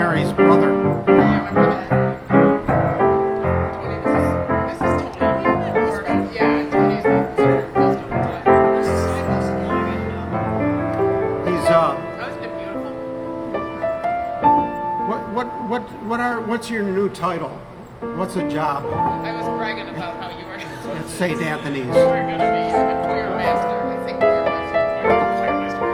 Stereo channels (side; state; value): both; identical; correlation 1.00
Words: brother. He's what's your new title? What's the job I was bragging about how you were at St. Anthony's? going to be a choir master. I think choir